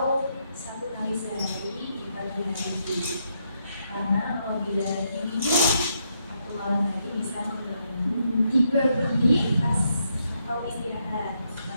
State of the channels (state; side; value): inverted; both; correlation -0.79